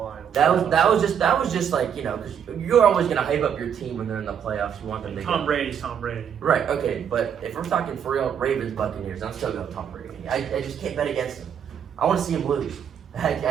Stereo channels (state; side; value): quieter; left; 8.2 dB